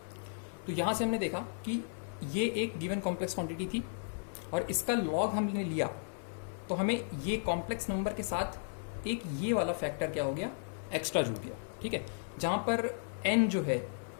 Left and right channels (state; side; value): silent; right; 55 dB below the other